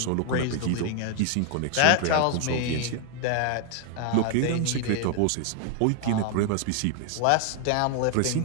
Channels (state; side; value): different; both; correlation 0.00